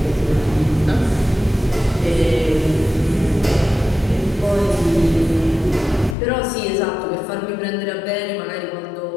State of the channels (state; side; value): drops out; right; at 6.2 s